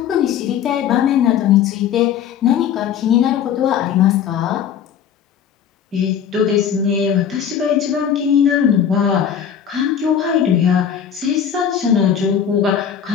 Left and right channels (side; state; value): right; quieter; 8.5 dB